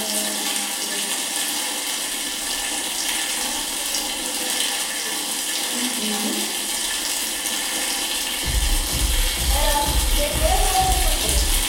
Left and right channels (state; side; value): identical; both; correlation 1.00